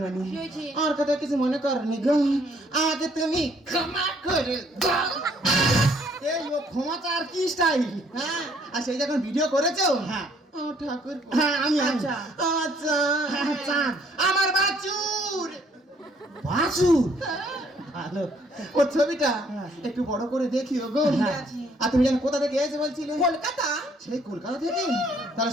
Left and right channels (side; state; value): both; normal; correlation 0.64